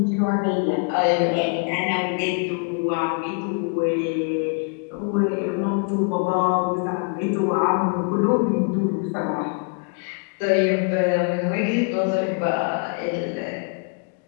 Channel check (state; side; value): quieter; right; 37.6 dB